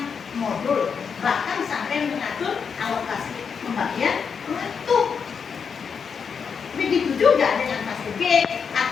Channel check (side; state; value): right; quieter; 6.3 dB